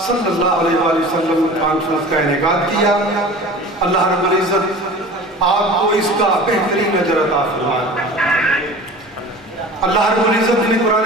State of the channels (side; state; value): both; normal; correlation 0.39